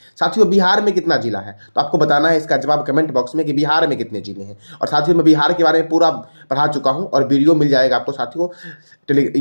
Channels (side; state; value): both; inverted; correlation -1.00